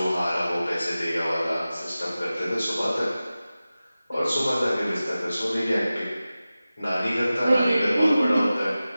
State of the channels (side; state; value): both; inverted; correlation -0.95